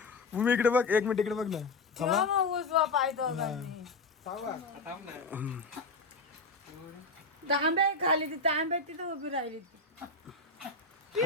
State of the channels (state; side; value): quieter; right; 3.3 dB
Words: भूमी इकडे बघ, 1 मिनिट इकडे बघ ना. तांब्या खाली ती तांब्या तिथं उभी राहिली.